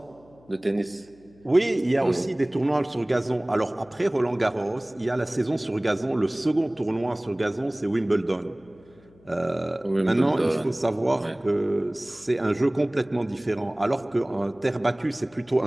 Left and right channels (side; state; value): left; noise; hum, 28 dB below the sound